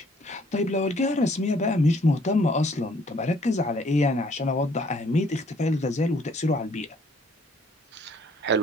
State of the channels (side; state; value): both; normal; correlation 0.62